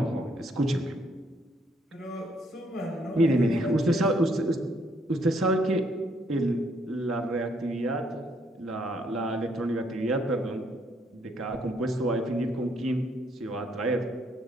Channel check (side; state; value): both; normal; correlation 0.70